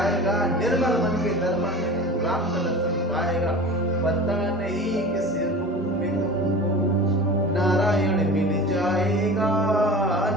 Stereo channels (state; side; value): normal; both; correlation 0.35